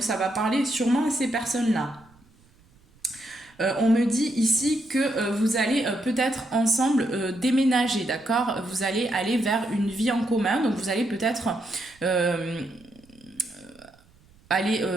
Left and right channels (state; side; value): noise; right; rumble, 30 dB below the sound